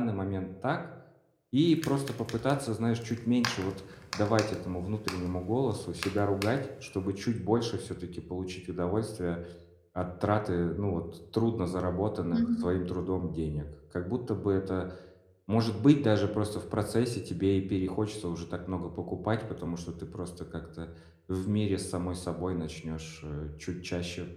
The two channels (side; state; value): both; identical; correlation 1.00